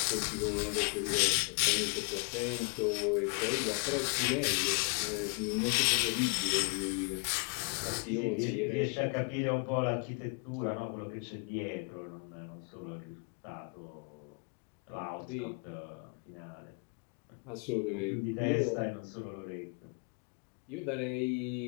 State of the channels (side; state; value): right; quieter; 35.6 dB